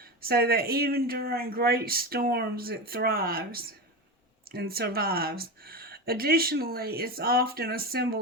so that even during great storms it thrives and survives. Additionally, it's often a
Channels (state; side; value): normal; both; correlation 0.21